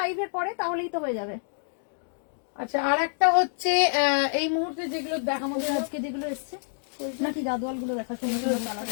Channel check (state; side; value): silent; right; digital silence